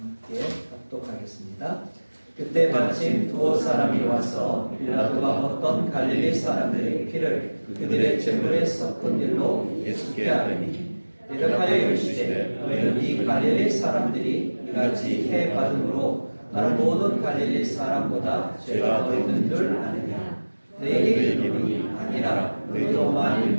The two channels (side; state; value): both; inverted; correlation -1.00